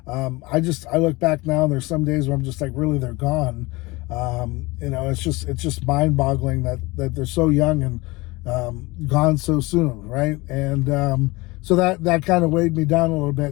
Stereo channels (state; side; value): quieter; right; 22.9 dB